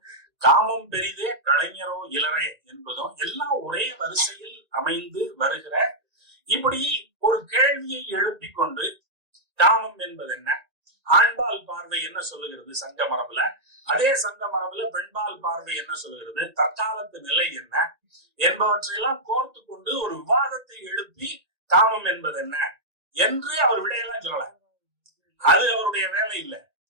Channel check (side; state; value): left; late; 1.8 ms